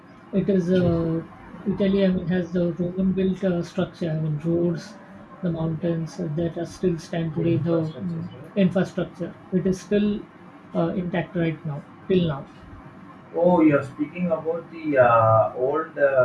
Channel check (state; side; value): identical; both; correlation 1.00